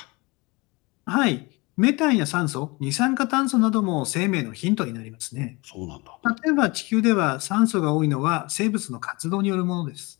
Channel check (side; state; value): right; quieter; 25.5 dB